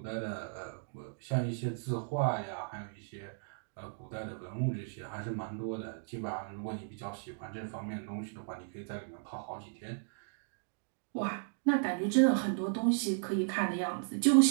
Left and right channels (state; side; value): silent; left; digital silence